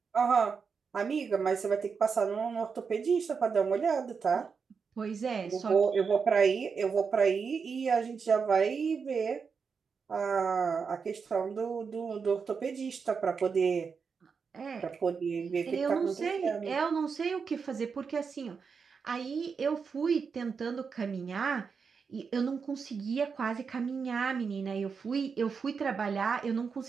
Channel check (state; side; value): quieter; left; 5.7 dB